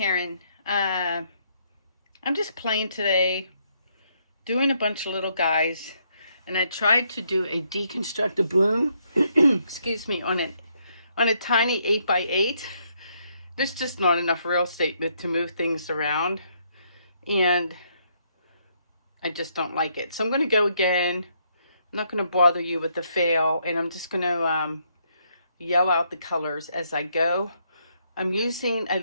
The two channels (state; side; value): inverted; both; correlation -0.73